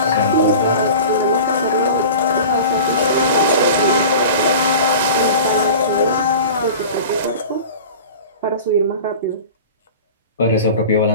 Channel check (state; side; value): inverted; both; correlation -0.37